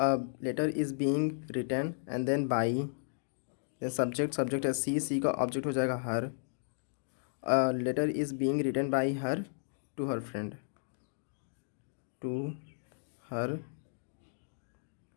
letter is being written and then by, subject, subject है she, she का object हो जाएगा her. A letter is being written by her to her friend, to her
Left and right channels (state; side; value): silent; right; digital silence